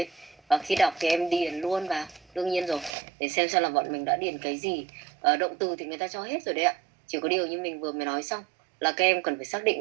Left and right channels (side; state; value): left; drops out; at 3.0 s